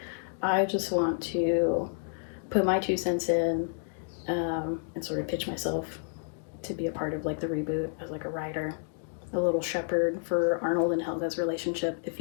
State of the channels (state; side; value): silent; right; digital silence